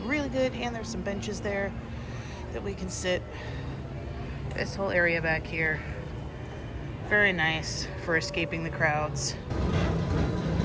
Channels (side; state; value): both; identical; correlation 1.00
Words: really good. And there's some benches there that we can sit. This whole area back here, very nice for escaping the crowds.